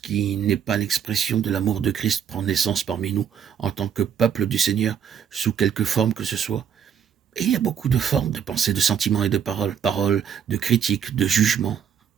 n'est pas l'expression de l'amour de Christ prend naissance parmi nous en tant que peuple du Seigneur, sous quelque forme que ce soit, et il y a beaucoup de formes de pensée, de sentiments et de paroles, paroles de critique, de jugement,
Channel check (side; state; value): left; quieter; 8.0 dB